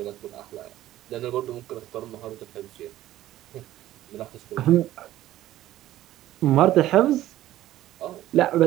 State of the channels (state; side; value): quieter; left; 14.3 dB